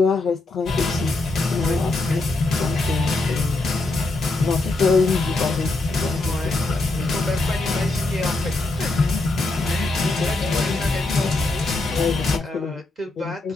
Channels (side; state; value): right; quieter; 3.1 dB